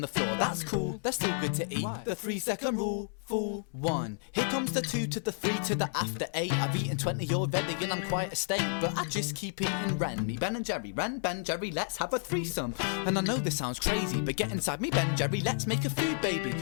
the floor, that's cool, they're still good to eat. Why? The 3-second rule, fool 1. Here comes the 2 to the 3 to the after 8. I've eaten 20 already and I'm quite a steak, but I just keep eating Ren. Me Ben and Jerry, Ren, Ben, Jerry, let's have a threesome. And I know this sounds crazy, but get inside me Ben, Jerry, let's make a food baby.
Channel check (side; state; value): right; silent; digital silence